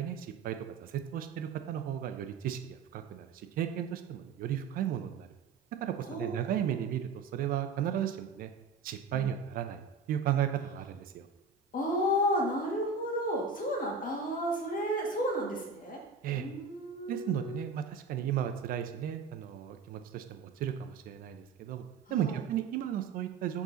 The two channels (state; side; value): quieter; left; 4.6 dB